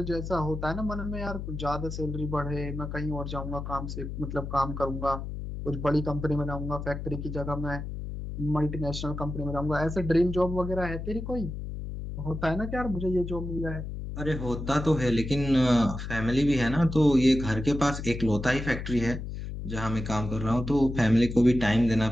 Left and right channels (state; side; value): noise; left; hum, 7 dB below the sound